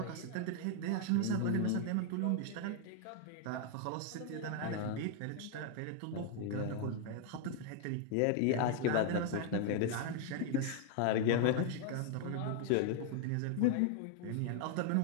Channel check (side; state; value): both; different; correlation 0.00